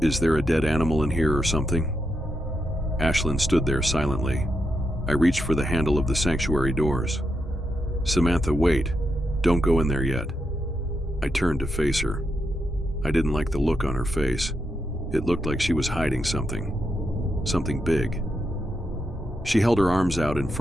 Is there a dead animal in here or something? Ashlyn stood there silently. I reached for the handle of the sanctuary doors. Samantha, wait. Don't go in there yet. I turned to face her. I didn't like the look on her face. It looked like she was hiding something. Something big. She held her arms out in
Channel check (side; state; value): both; normal; correlation 0.84